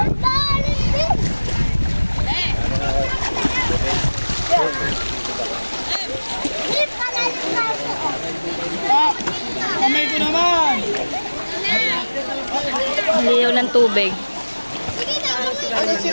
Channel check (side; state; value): both; inverted; correlation -1.00